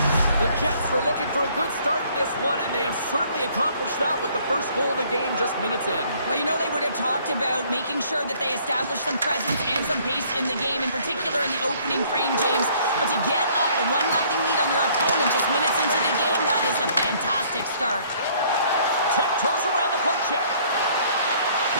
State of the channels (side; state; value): both; inverted; correlation -0.60